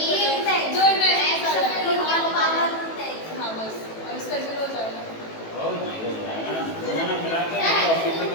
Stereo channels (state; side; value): late; right; 18 ms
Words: जो हाँ बस, और इसका 0 हो जाएगा। ओ ये हो जाएगा ना, दोनों मिला के ऑफिस में